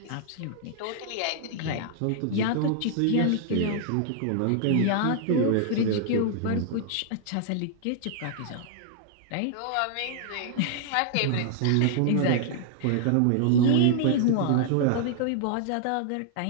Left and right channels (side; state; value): both; different; correlation 0.00